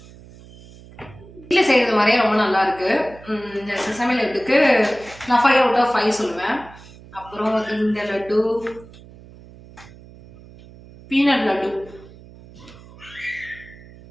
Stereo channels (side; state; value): right; noise; hum, 21 dB below the sound